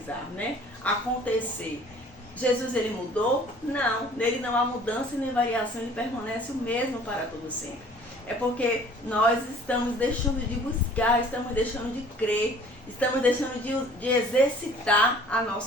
né? Acontecer. Jesus ele mudou? Não. Nele não há mudança nem variação, ele permanece o mesmo para todo sempre. É porque nós estamos deixando de buscar, estamos deixando de crer, estamos deixando de exercitar a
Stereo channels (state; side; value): normal; both; correlation 0.51